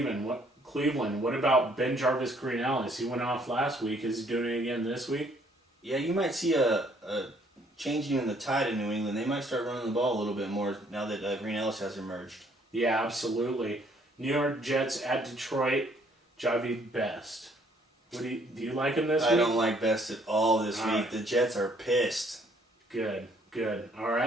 What about Ben Jarvis Green-Ellis? He went off last week. Is he doing it again this week? Yeah, you might see a changing in the tide in New England. They might start running the ball a little bit more now that Green-Ellis has emerged. Yeah, absolutely. New York Jets at Detroit. Javi Best. Do you like him this week? I don't like Best at all this week. The Jets are pissed. Good. Good. All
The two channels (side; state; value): both; normal; correlation 0.64